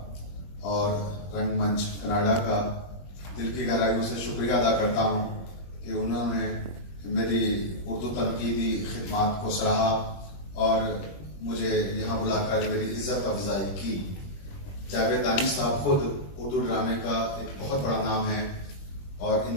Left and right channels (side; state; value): right; late; 21 ms